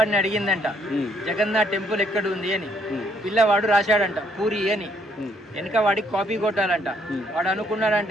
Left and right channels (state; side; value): normal; both; correlation 0.68